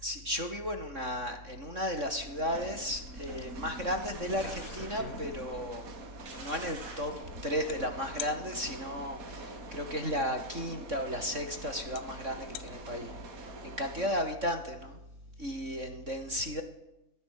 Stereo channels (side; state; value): left; late; 3.6 ms